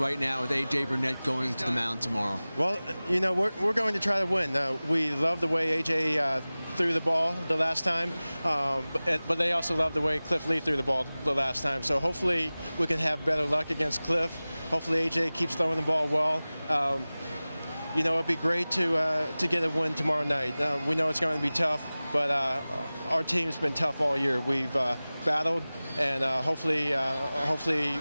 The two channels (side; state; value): both; inverted; correlation -0.98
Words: now with A.J. Burnett going to the mound tomorrow? Well, you know, we're going to try to win. We love the way A.J. threw the ball the last time, but they also love the way Cliff Lee threw the ball the last time. So hopefully we can have better luck against Cliff. Hopefully A.J. keeps throwing the ball well. You know, it'd be great to get a win tomorrow night. We know it's going to be tough, but our team's been tough all year. We've battled, and hopefully